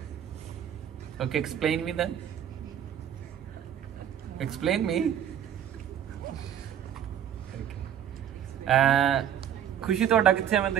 Okay explain me then। Explain me. खुशी ਤੁਹਾਡਾ ਕਿੱਥੇ ਆ ਮੈਂ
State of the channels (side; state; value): left; quieter; 9.7 dB